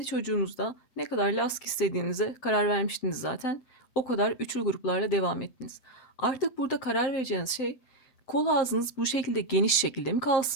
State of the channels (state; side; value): late; right; 8.0 ms